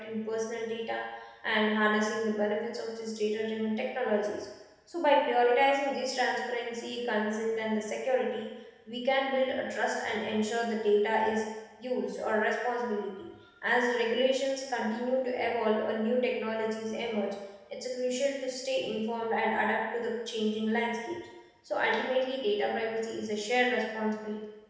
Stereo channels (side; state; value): both; identical; correlation 1.00